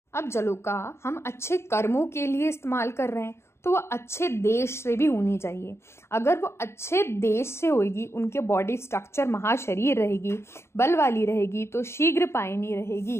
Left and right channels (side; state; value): right; late; 0.13 ms